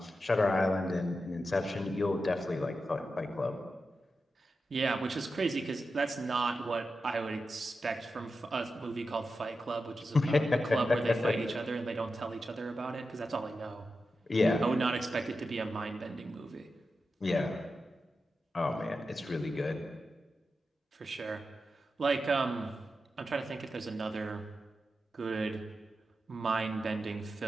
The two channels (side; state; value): both; normal; correlation 0.90